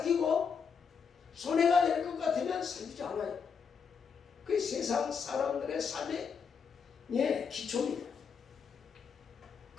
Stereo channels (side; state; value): right; quieter; 6.2 dB